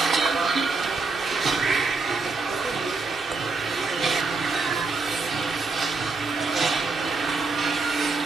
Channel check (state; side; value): quieter; left; 3.9 dB